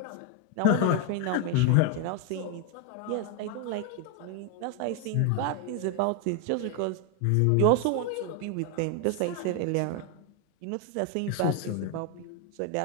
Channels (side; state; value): both; different; correlation 0.01